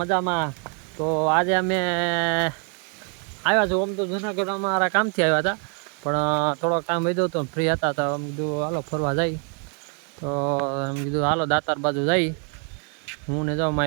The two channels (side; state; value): left; quieter; 38.7 dB